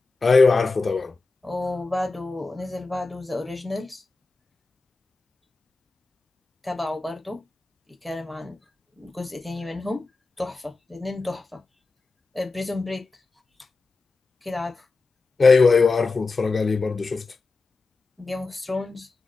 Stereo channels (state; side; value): quieter; right; 3.7 dB